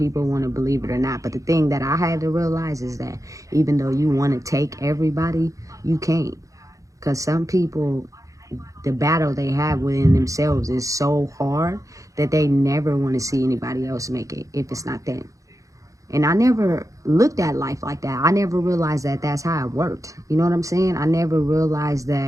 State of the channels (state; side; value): late; left; 0.16 ms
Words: want to believe it or not. But the thing that I had to realize is that even though you want to take everybody, you can't. Because some people, the battle they have within themselves is so hard that they never want to see anybody else make it if it's not them. And I never looked at life like that. I never realized that that's how it worked. You know what I'm saying? I never realized